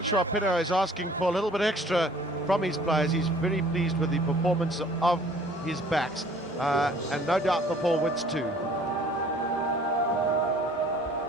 Pinto is asking for a little bit extra from his players. He's very pleased with the performance of his backs, and no doubt the forwards too.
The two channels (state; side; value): normal; both; correlation 0.54